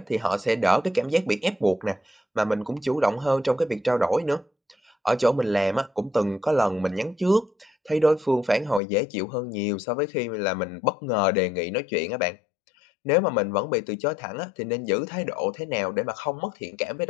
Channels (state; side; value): drops out; right; at 8.8 s